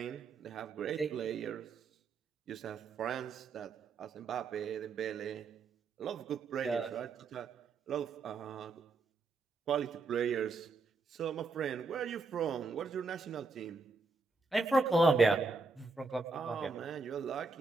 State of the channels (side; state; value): left; quieter; 4.1 dB